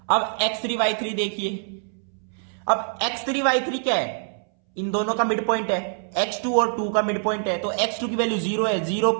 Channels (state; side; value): silent; left; 62 dB below the other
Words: अब x3 y3 देखिए, अब x3 y3 क्या है, इन दोनों का मिड पॉइंट है, x2 और 2 का मिड पॉइंट है, तो x2 की वैल्यू 0 है, 0